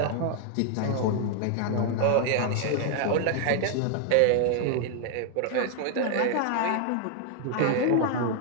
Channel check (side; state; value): both; different; correlation 0.00